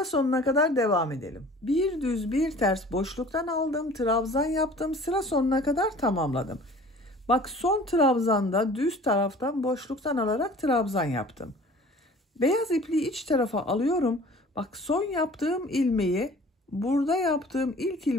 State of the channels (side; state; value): both; normal; correlation 0.47